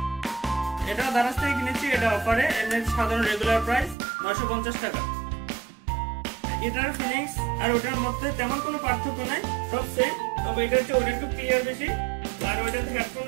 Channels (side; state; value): left; drops out; at 4.0 s